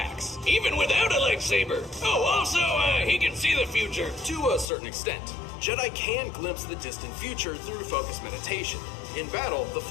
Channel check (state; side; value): drops out; right; at 4.7 s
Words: Even without a lightsaber. Oh, also, he can see the future. To a certain extent, Jedi can glimpse the distant future through focused meditation. In battle, the